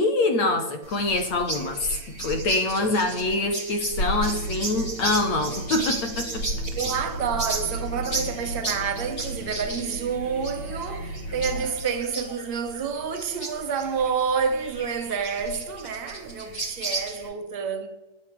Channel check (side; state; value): right; late; 8.7 ms